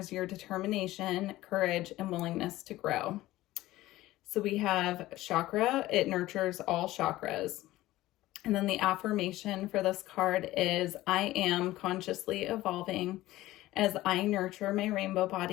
your determination, courage, and willingness to grow. So we have chakra. It nurtures all chakras. And then the affirmation for this card is, I am consciously evolving as I nurture my rainbow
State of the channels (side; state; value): right; quieter; 16.6 dB